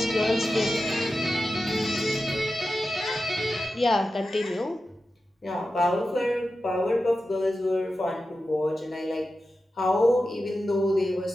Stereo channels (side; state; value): both; normal; correlation 0.92